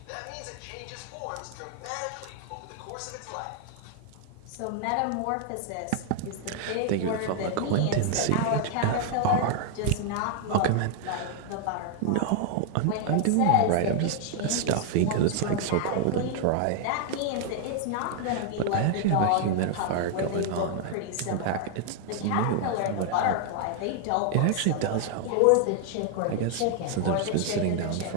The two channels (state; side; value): different; both; correlation 0.00